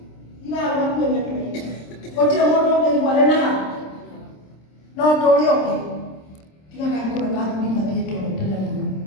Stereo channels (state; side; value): late; right; 26 ms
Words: tiga kali kula kathuri mathiĩtwo tene mũno